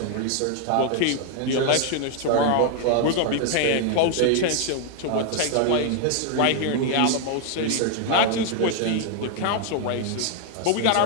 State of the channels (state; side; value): different; both; correlation 0.00